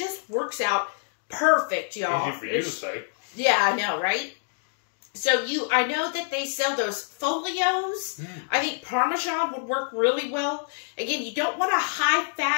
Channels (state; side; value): silent; right; digital silence